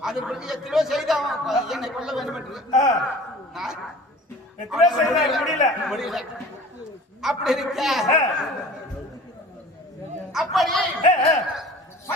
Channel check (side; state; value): both; normal; correlation 0.43